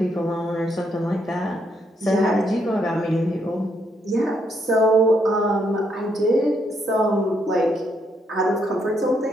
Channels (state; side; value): normal; both; correlation 0.75